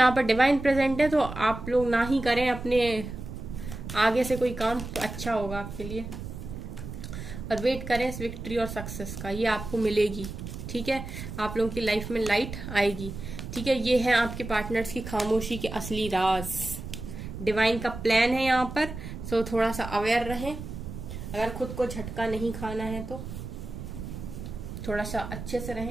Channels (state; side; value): noise; right; rumble, 9 dB below the sound